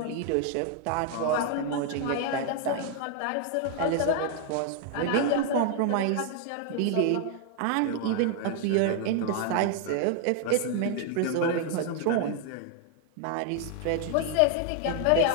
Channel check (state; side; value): different; both; correlation 0.00